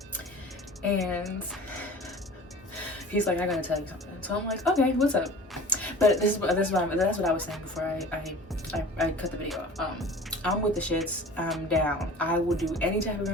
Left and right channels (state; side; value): normal; both; correlation 0.40